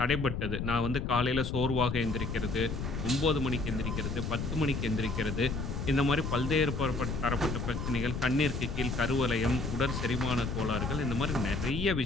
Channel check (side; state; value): left; noise; rumble, 3 dB below the sound